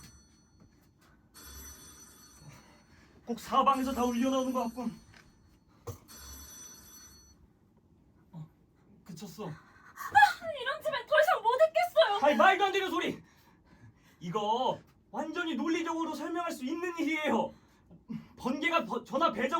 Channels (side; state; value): both; identical; correlation 1.00